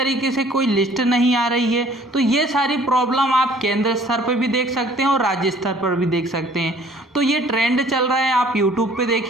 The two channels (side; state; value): both; normal; correlation 0.55